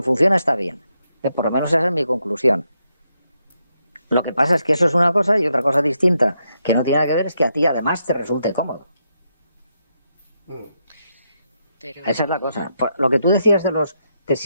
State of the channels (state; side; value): inverted; both; correlation -0.81